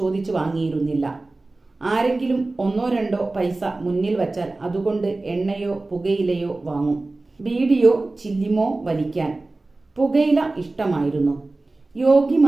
വാങ്ങിയിരുന്നില്ല. ആരെങ്കിലും 1-2 പൈസ മുന്നിൽ വച്ചാൽ അതുകൊണ്ട് എണ്ണയോ പുകയിലയോ വാങ്ങും. ബീഡിയോ ചില്ലിമോ വലിക്കാൻ. പുകയില ഇഷ്ടമായിരുന്നു.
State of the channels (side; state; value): left; quieter; 3.2 dB